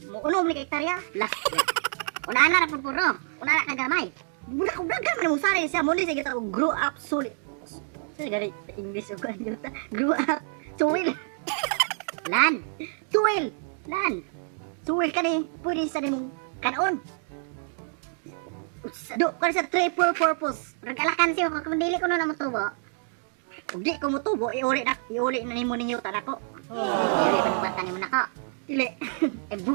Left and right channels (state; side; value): silent; left; 56 dB below the other